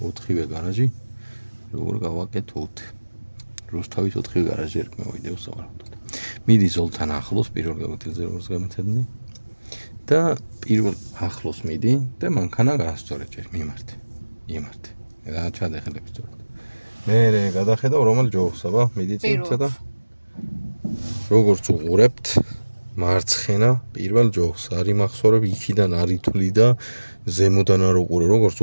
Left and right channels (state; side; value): inverted; both; correlation -1.00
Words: გარაჟი, როგორ გავაკეთოთ. რუსთავის 4-ვე გარაჟი ერქმევა ვიდეოს სავარაუდოდ. მიდი ზოლთან ახლოს პირველ გამოცდილზე როგორც გამეთადნენ და პირველ ახლოს მიდი და მანქანა გაასწორე ჯერ მიმართე. და ჩადეხელებს სწორად. მე გადახედავ რომელ ჯოხს, აბა, მიდი წინ ცოტა. როგორც უყურებთ მარცხენა პირველ ჯოხს არის მახსოვრებ იქიდან არ ითვლი და ზემოდან არ უყურე როგორც